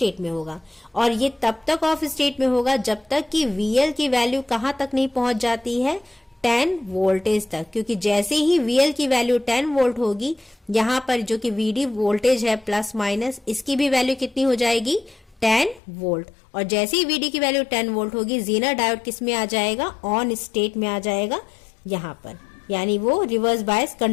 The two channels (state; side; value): drops out; right; at 15.8 s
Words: में होगा। और ये तब तक ऑफ स्टेट में होगा जब तक कि VL की वैल्यू कहां तक नहीं पहुंच जाती है, 10 वोल्टेज तक, क्योंकि जैसे ही VL की वैल्यू 10 वोल्ट होगी, यहां पर जो कि VD वोल्टेज है प्लस माइनस, इसकी भी वैल्यू कितनी हो जाएगी 10 वोल्ट। और जैसे ही VD की वैल्यू 10 वोल्ट होगी, जीनर डायोड किस में आ जाएगा, ऑन स्टेट में आ जाएगा यहां पर, यानी वो रिवर्स बायस